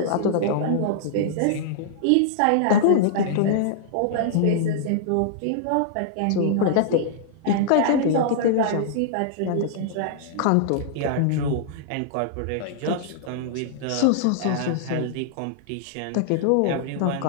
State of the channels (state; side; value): different; both; correlation -0.01